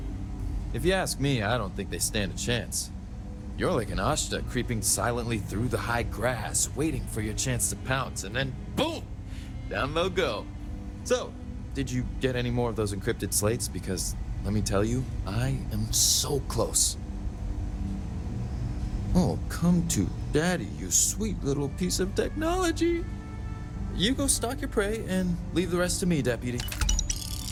If you ask me, I don't think they stand a chance. You're like an Ashta creeping silently through the high grass, waiting for your chance to pounce, and then boom! Down they'll go. So, did you get any more of those encrypted slates? Because, let me tell you, I am so close. Oh, come to Daddy, you sweet little piece of technology. You go stalk your prey and leave the rest to me, Deputy.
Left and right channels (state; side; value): identical; both; correlation 1.00